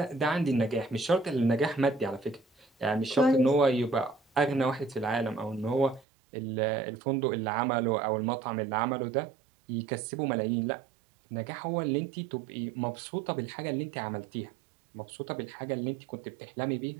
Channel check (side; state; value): left; drops out; at 6.1 s